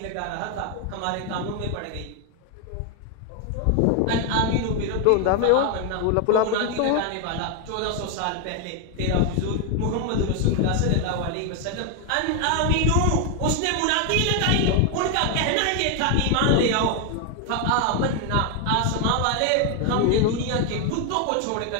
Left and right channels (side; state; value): both; different; correlation 0.01